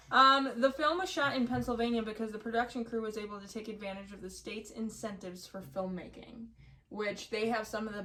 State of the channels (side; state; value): both; identical; correlation 1.00